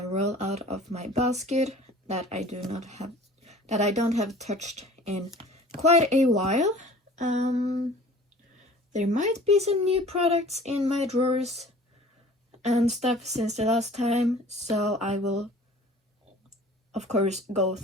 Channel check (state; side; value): normal; both; correlation 0.47